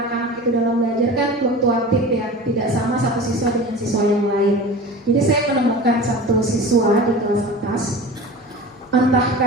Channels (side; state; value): both; normal; correlation 0.35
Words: itu dalam belajar kan fluktuatif ya, tidak sama satu siswa dengan siswa yang lain. Jadi saya menemukan satu siswa di kelas atas,